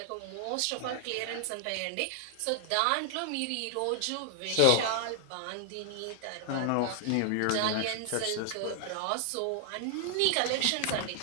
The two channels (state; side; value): different; both; correlation 0.00